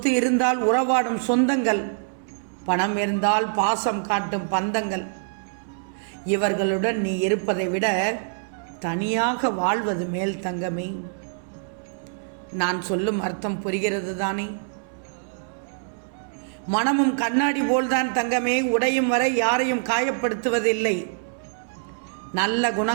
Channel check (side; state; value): left; silent; 62 dB below the other